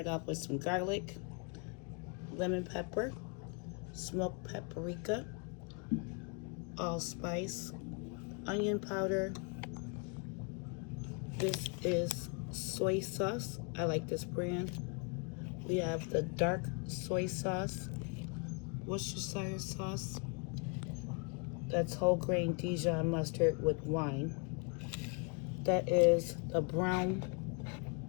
off with some garlic, lemon pepper, smoked paprika, allspice, onion powder. This is soy sauce. I like this brand. We have the dark soy sauce, Worcestershire sauce. That's whole grain Dijon mustard with wine. That is the brown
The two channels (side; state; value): right; quieter; 35.3 dB